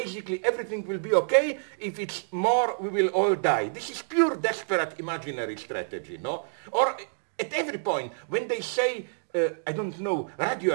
everything will be okay. If it's more, we will all die. This is pure desperate imaginary strategy, no? Or at every point, when they say,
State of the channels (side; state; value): left; silent; digital silence